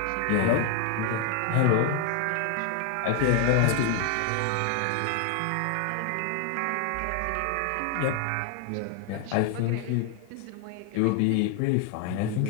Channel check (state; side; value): different; both; correlation 0.00